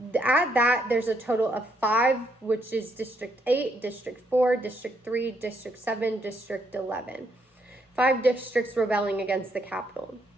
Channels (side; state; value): both; normal; correlation 0.74